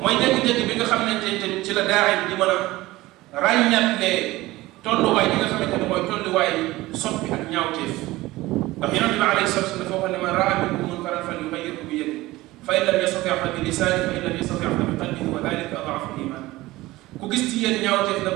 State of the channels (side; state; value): left; quieter; 18.6 dB